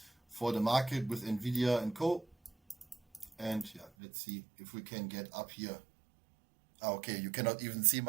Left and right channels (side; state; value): left; drops out; at 3.9 s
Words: for the market with Nvidia and co. And yeah, let's see if we can get up here. Okay, you cannot even see